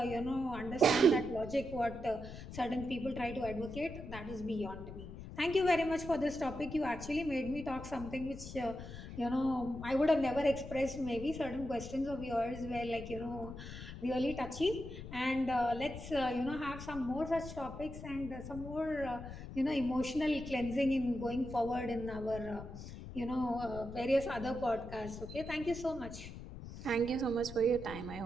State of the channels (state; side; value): noise; left; rumble, 11 dB below the sound